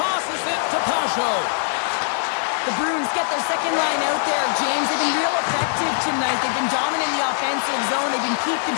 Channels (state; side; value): silent; right; digital silence